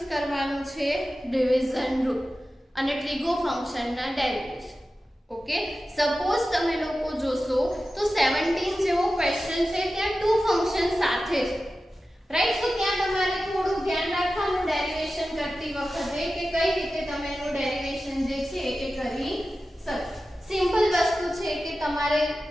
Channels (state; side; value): normal; both; correlation 0.94